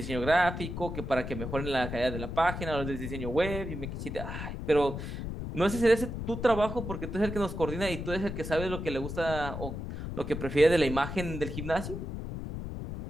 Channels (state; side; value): noise; left; rumble, 6 dB below the sound